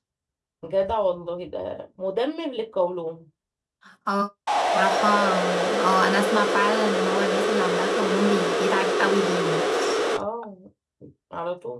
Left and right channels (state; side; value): identical; both; correlation 1.00